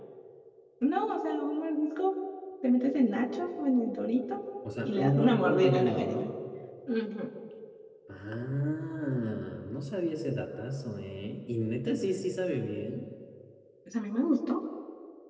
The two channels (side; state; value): both; identical; correlation 1.00